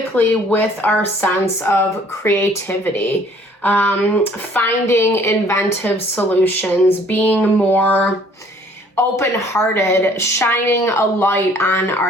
with our sense of creativity, finding inventive solutions, being more open-hearted, shining a light on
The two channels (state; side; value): normal; both; correlation 0.57